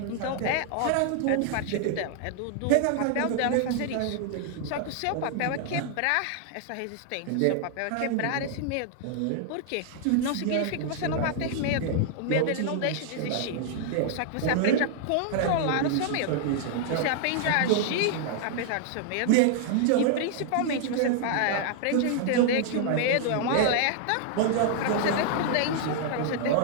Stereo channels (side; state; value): both; different; correlation 0.00